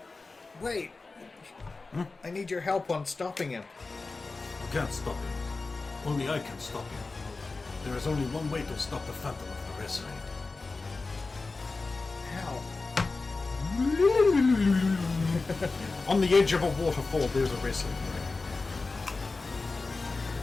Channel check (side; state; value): right; quieter; 3.8 dB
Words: Wait. I need your help on stopping him. You can't stop him. Only I can stop him. There is only one way to stop the Phantom of the Wrestling. How? On the edge of a waterfall, there's a wrestling ring.